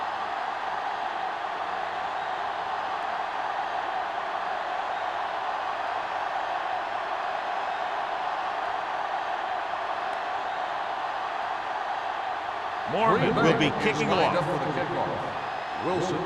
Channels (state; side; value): identical; both; correlation 1.00